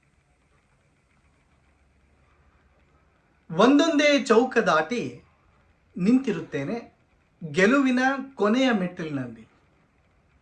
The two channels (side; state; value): both; identical; correlation 1.00